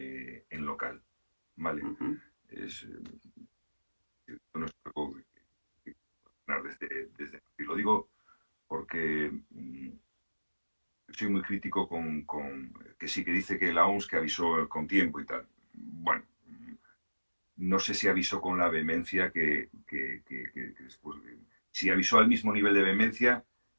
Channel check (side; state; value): both; inverted; correlation -1.00